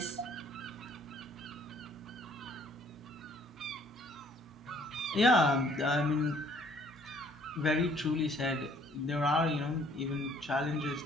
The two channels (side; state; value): both; normal; correlation 0.60